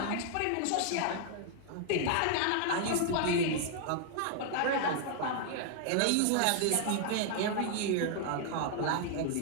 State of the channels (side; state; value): both; different; correlation 0.00